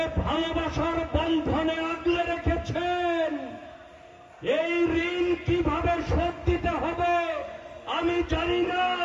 ভালোবাসার বন্ধনে আগলে রেখেছেন, এই ঋণ কিভাবে শোধ দিতে হবে আমি জানি না,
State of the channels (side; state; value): both; identical; correlation 1.00